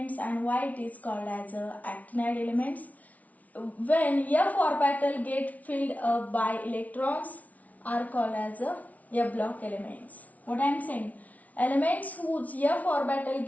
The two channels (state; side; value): late; right; 0.071 ms